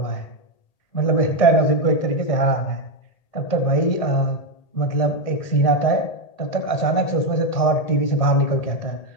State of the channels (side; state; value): right; late; 1.8 ms